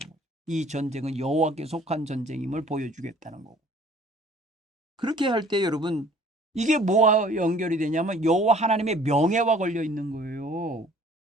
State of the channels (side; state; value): both; normal; correlation 0.53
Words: 이 전쟁은 여호와께 속한 전쟁임을 보여주겠다는 거고. 그렇게 할 때 여러분, 이게 뭐와 연결이 되냐면 여호와 하나님의 명예와 걸려 있는 거예요.